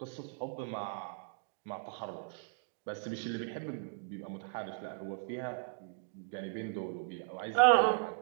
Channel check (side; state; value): left; silent; digital silence